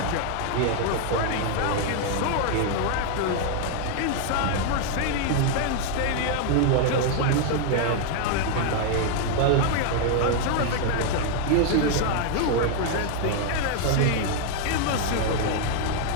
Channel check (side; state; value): both; different; correlation 0.00